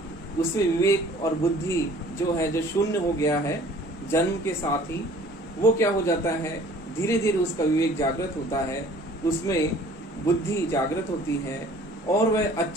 उसमें विवेक और बुद्धि जो है, जो शून्य हो गया है जन्म के साथ ही, वो क्या हो जाता है, धीरे धीरे उसका विवेक जागृत होता है, उसमें बुद्धि जागृत होती है, और वह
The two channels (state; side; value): normal; both; correlation 0.52